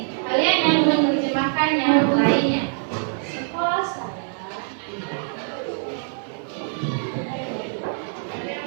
kalian yang menerjemahkan yang lainnya. Sekolah saya.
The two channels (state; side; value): silent; left; 59 dB below the other